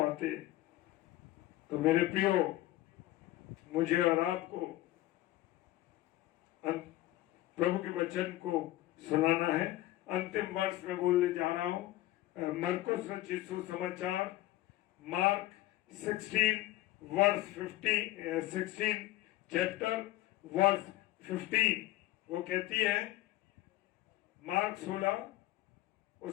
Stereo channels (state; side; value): quieter; right; 16.3 dB